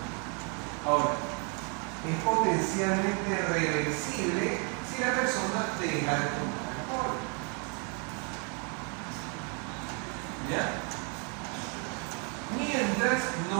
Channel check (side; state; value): left; quieter; 36.4 dB